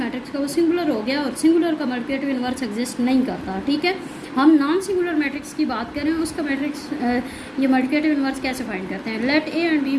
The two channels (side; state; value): both; identical; correlation 1.00